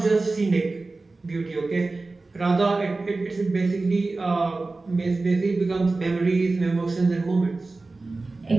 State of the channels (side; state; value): left; quieter; 3.4 dB